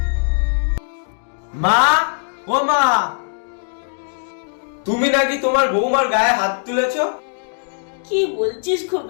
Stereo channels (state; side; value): silent; right; digital silence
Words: মা, ও মা, তুমি নাকি তোমার বৌমার গায়ে হাত তুলেছো? কি বলছিস